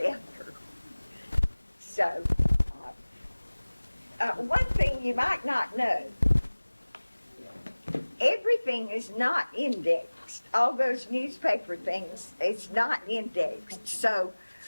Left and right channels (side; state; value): both; inverted; correlation -1.00